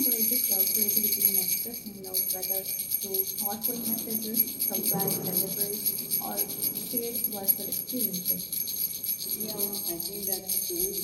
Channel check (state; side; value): identical; both; correlation 1.00